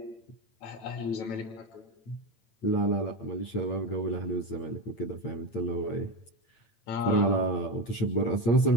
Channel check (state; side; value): late; right; 8.9 ms